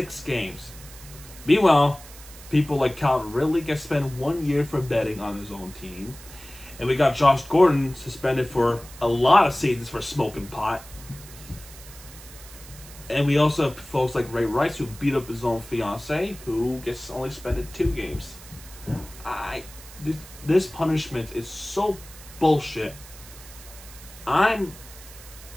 games. Meanwhile, people like Calvin Ridley get spent 1 year for betting on his own team. And we got Josh Gordon suspended for a lot of seasons for smoking pot. And we also have folks like Ray Rice, who beat up his own fiance, who gets only suspended 2 games. This punishment is so bullshit. I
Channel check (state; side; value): noise; right; hiss, 18 dB below the sound